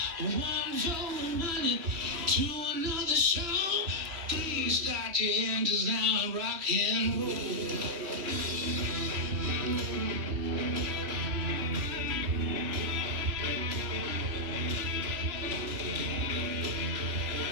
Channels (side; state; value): left; late; 3.1 ms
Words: One for the money, to another show. Please start your engines now and rock and roll.